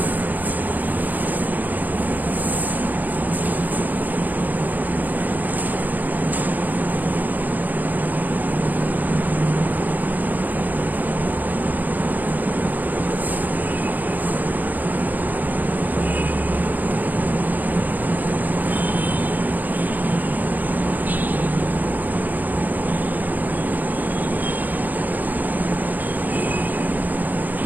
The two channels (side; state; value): left; late; 0.083 ms